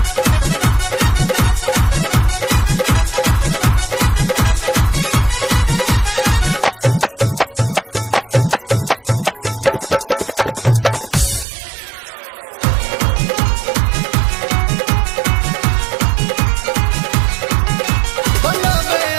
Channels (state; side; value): drops out; left; at 11.5 s